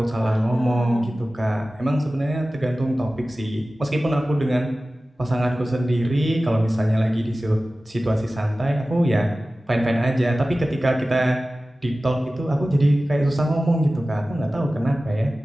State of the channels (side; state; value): both; normal; correlation 0.96